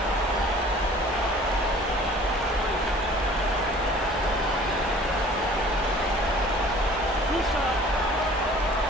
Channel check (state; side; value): normal; both; correlation 0.49